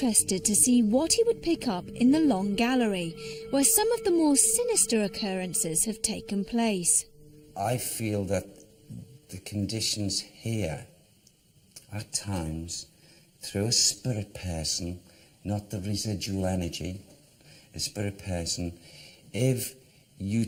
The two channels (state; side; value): identical; both; correlation 1.00